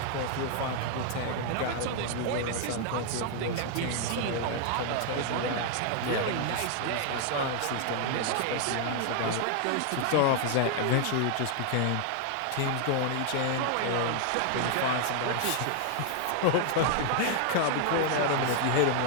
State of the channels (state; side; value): different; both; correlation 0.00